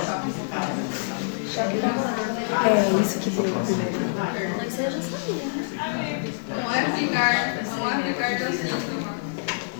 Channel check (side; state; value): right; silent; 61 dB below the other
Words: É isso que deu primeiro. Mas eu já sabia, né? Vamos a explicar los síntomas.